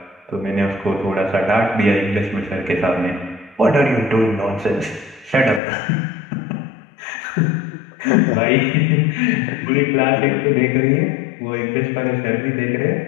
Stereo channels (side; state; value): right; drops out; at 5.6 s